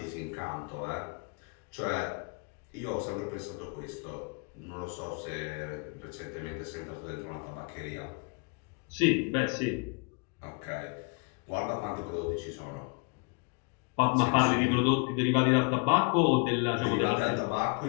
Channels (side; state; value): right; quieter; 32.7 dB